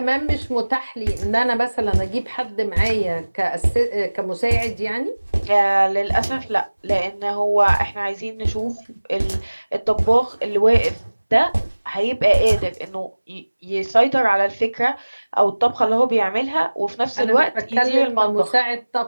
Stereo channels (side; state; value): both; inverted; correlation -1.00